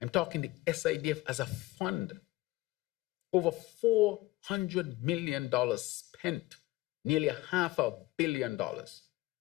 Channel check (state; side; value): quieter; right; 18.8 dB